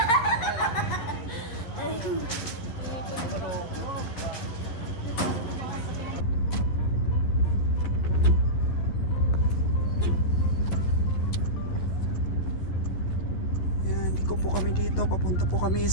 Dito, papunta po kami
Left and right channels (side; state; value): right; late; 11 ms